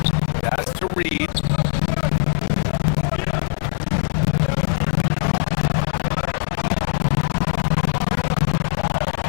That's to Reed.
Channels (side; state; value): right; silent; digital silence